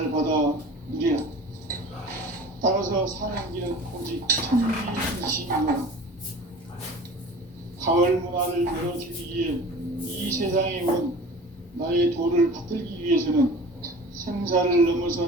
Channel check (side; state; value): both; normal; correlation 0.41